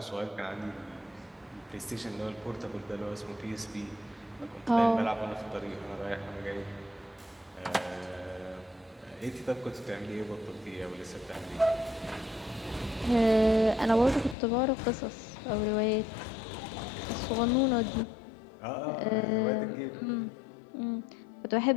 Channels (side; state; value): right; drops out; at 14.4 s